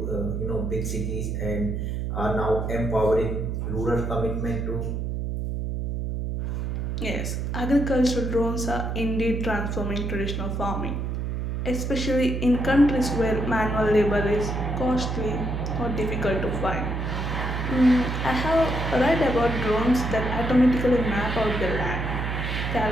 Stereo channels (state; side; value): noise; right; hum, 2 dB below the sound